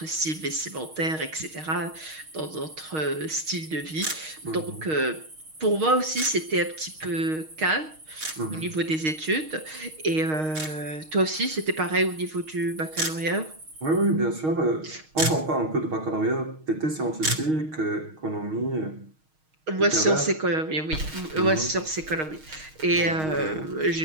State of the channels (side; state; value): left; late; 6.4 ms